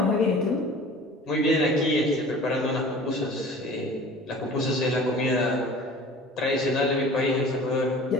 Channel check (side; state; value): both; normal; correlation 0.43